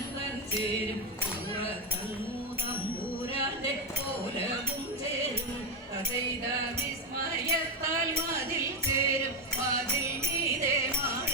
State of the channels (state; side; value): normal; both; correlation 0.09